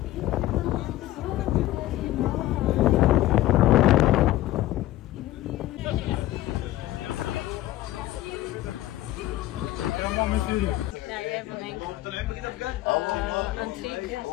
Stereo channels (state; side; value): quieter; right; 15.3 dB